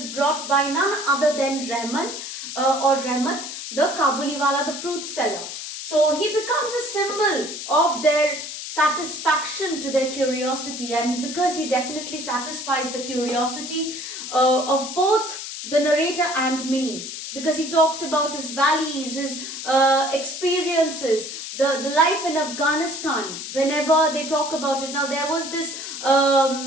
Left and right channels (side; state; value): left; noise; hiss, 8 dB below the sound